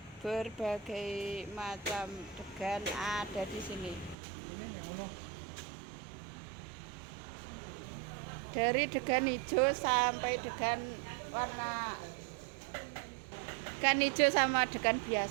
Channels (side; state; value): left; drops out; at 4.2 s